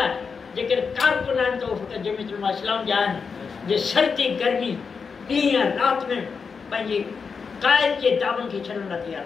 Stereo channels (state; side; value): quieter; right; 5.5 dB